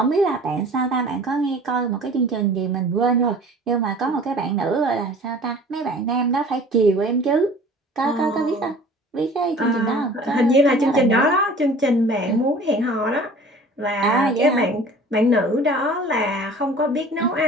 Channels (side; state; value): both; normal; correlation 0.46